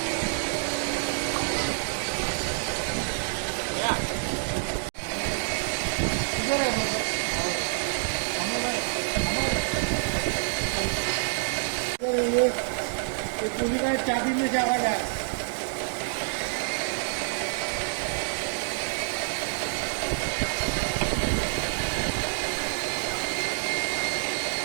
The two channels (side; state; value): left; silent; digital silence